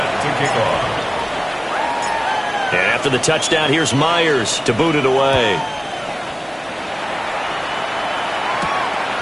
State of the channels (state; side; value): identical; both; correlation 1.00